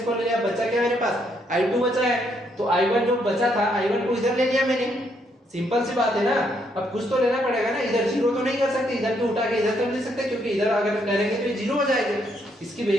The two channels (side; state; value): both; normal; correlation 0.73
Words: ले लिया, बचा क्या मेरे पास, I2 बचा है। तो I1 जो बचा था, I1 को इधर ले लिया मैंने, सिंपल सी बात है ना। अब कुछ तो लेना पड़ेगा ना, इधर जीरो तो नहीं कर सकते, इधर भी उठा के इधर तो ले सकते, क्योंकि इधर अगर करेंगे तो ये जीरो हो जाएगा, इसकी